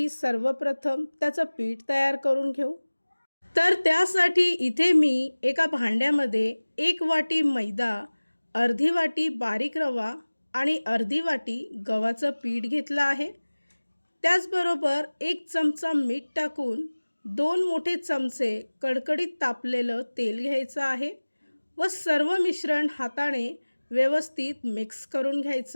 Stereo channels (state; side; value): inverted; both; correlation -1.00